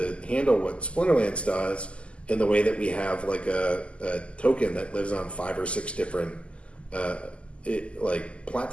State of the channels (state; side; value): late; right; 0.056 ms